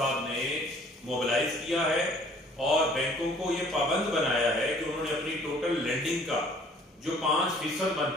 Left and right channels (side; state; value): both; normal; correlation 0.56